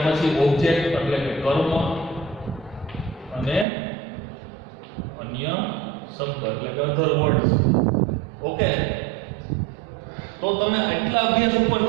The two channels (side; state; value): left; drops out; at 3.7 s